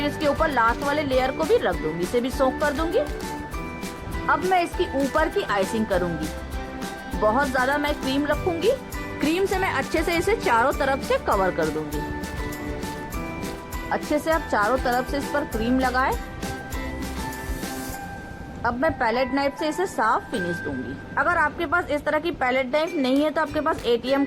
इसके ऊपर लास्ट वाले लेयर को भी रख दूंगी, इसे भी सोक कर दूंगी। अब मैं इसकी ऊपर की आइसिंग करूंगी। बहुत ज्यादा मैं क्रीम रखूंगी। क्रीम से मैं अच्छे से इसे चारों तरफ से कवर कर दूंगी। अच्छे से आप चारों तरफ से इस पर क्रीम लगाएं। अब मैं पैलेट नाइफ से इसे साफ फिनिश दूंगी। अगर आपके पास इस तरह की पैलेट नाइफ नहीं है तो आपके पास ATM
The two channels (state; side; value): identical; both; correlation 1.00